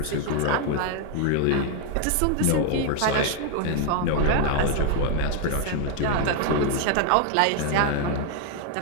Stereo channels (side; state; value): both; different; correlation 0.01